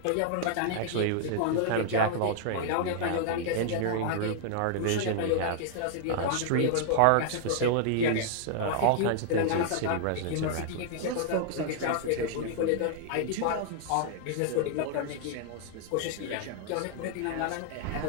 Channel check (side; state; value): both; different; correlation -0.01